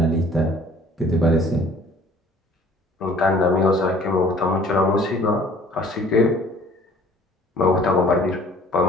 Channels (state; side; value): normal; both; correlation 0.53